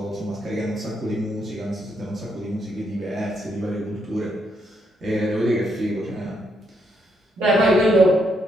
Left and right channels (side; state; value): both; normal; correlation 0.77